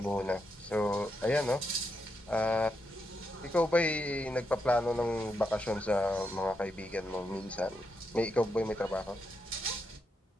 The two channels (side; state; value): both; normal; correlation 0.83